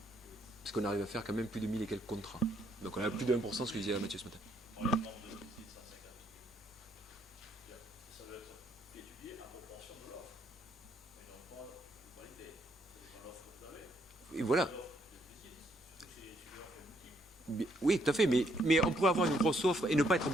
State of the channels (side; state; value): both; normal; correlation 0.72